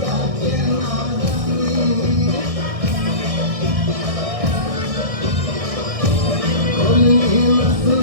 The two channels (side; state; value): left; late; 1.6 ms